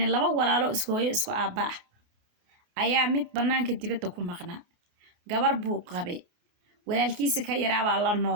لبا walaalo isku hooyo isku aaba ayaa mid banaanka dibadda ku maqnaa gabar buu qabay walaalkiisa ka yaraaba la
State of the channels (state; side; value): late; left; 29 ms